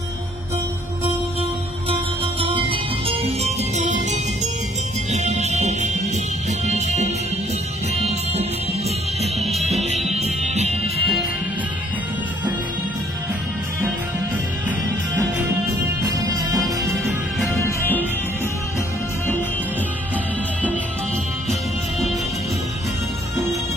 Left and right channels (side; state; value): both; normal; correlation 0.62